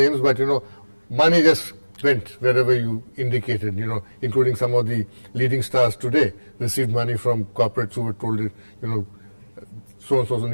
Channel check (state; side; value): inverted; both; correlation -1.00